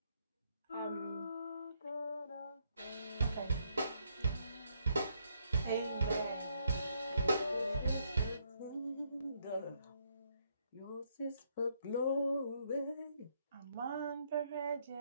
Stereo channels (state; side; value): inverted; both; correlation -0.73